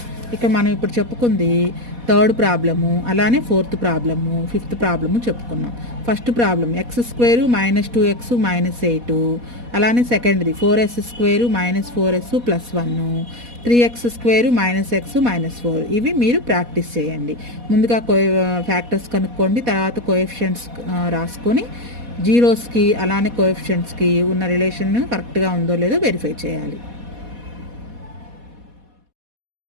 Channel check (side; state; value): left; late; 4.1 ms